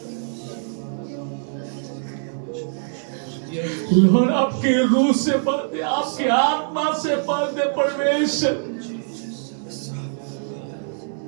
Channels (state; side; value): silent; left; 63 dB below the other